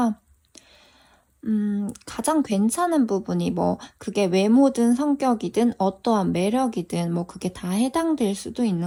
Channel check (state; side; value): identical; both; correlation 1.00